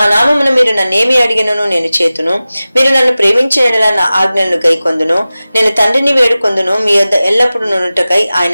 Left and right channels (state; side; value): inverted; both; correlation -0.97